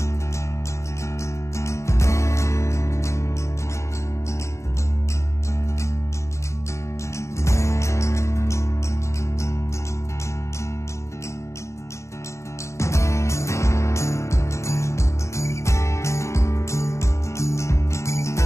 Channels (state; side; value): late; right; 0.14 ms